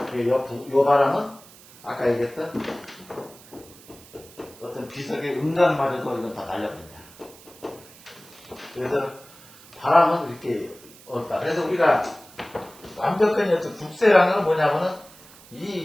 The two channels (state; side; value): noise; right; hiss, 22 dB below the sound